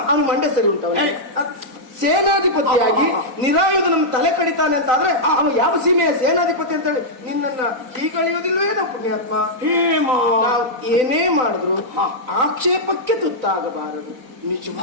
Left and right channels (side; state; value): left; late; 3.9 ms